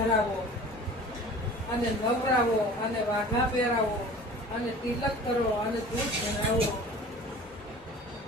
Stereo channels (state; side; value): normal; both; correlation 0.43